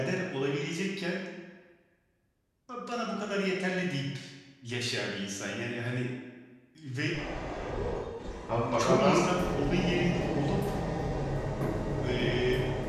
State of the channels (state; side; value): identical; both; correlation 1.00